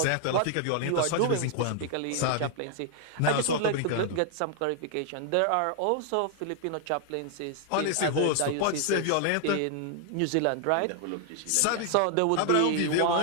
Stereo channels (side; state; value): both; different; correlation 0.00